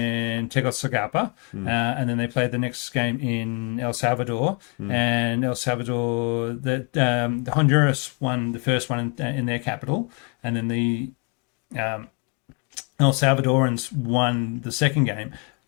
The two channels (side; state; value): right; quieter; 34.2 dB